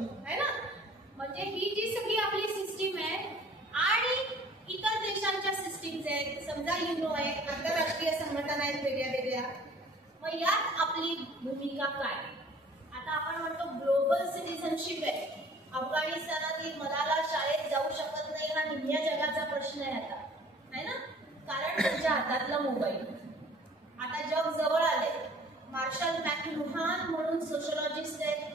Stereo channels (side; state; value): both; normal; correlation 0.51